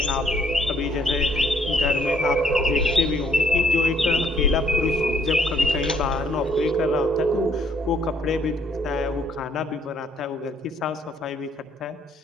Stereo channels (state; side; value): normal; both; correlation 0.66